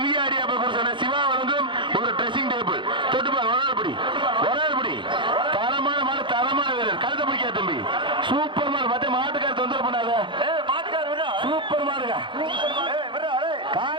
அப்ப சிவா வழங்கும் ஒரு ட்ரெஸ்ஸிங் டேபிள் தொட்டுப்பார் ஒரு நாள் படி தரமான மாடு தரமான வீரர் கழுத்தை பிடிக்காது தம்பி சூப்பர் மாடு மத்த மாட்டுக்கார தொந்தரவு பண்ணாத சூப்பர் மாடுங்க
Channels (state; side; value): late; left; 0.23 ms